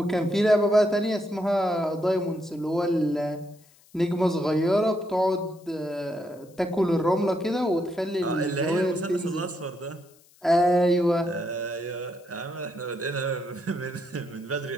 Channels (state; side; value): noise; left; hiss, 29 dB below the sound